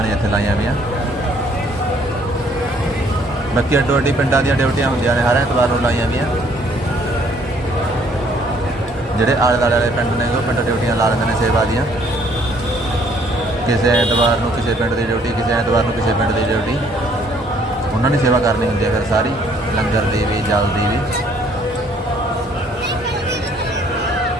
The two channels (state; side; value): normal; both; correlation 0.63